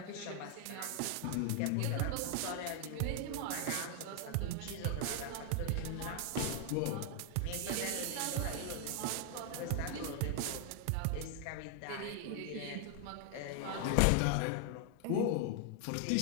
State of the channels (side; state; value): both; different; correlation 0.00